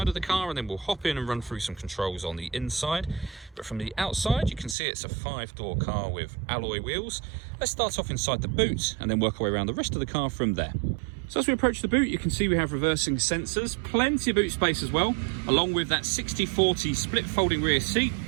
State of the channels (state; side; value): drops out; left; at 4.8 s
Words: of the car, and then we'll hop in and run through some controls on the inside. But from the outside, you can see it's a 5-door car with alloy wheels. Let's start off inside the boot and then work our way around the rest of the car from there. So as we approach the boot, you can see we have reversing sensors, plenty of boot space as well, along with that 60/40 split folding rear seat,